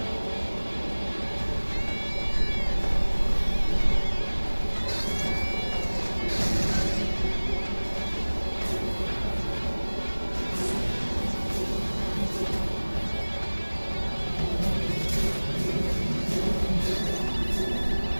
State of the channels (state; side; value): inverted; both; correlation -1.00